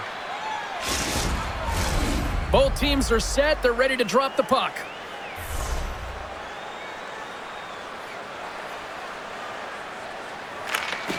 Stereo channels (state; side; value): identical; both; correlation 1.00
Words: Both teams are set. They're ready to drop the puck.